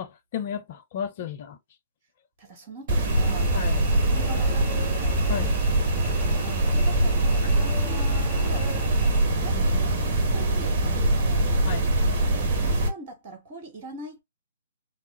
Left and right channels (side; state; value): both; inverted; correlation -0.64